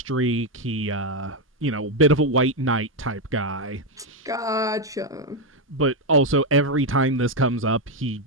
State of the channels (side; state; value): both; normal; correlation 0.04